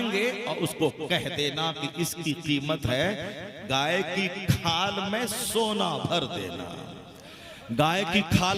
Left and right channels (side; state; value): both; identical; correlation 1.00